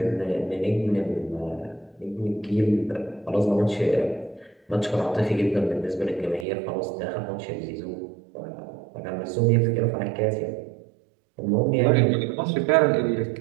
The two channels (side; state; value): left; drops out; at 6.5 s